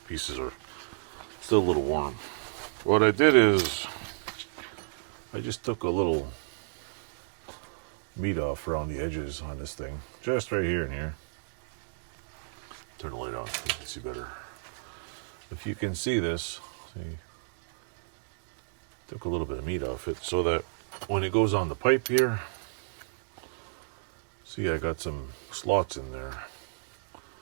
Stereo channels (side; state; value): left; silent; digital silence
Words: pieces are still a little warm. What I did is I just took a little meat off around the edges on this thing. Just right here and here. Turn the light on so you can see better. If you can see this, see, took a little bit of meat off it so that when it goes on the pipe here, see I got some slots in there